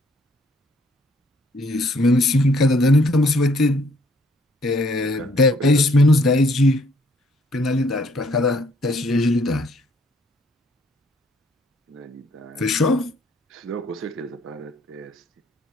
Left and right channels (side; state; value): both; normal; correlation 0.65